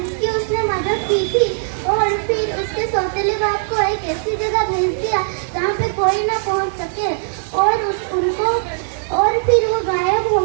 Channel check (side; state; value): left; silent; 66 dB below the other